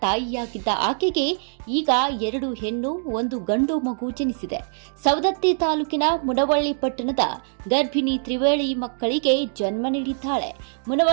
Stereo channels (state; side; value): silent; left; digital silence